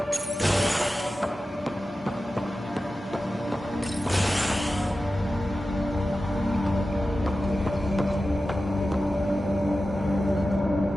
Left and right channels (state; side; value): normal; both; correlation 0.93